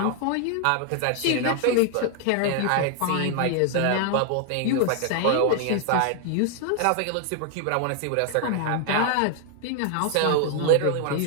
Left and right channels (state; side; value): different; both; correlation 0.00